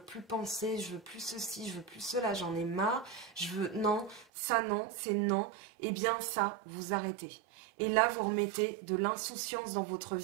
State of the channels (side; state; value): left; drops out; at 4.2 s